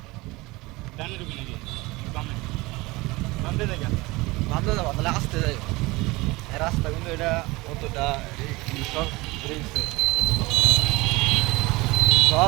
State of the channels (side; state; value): left; quieter; 22.2 dB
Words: ডানে ঢুকি নাকি বামে বামে যাই কেন ভাবতে যাবো তাহলে আসতে যাই। রাস্তা কিন্তু এটা অতটা সব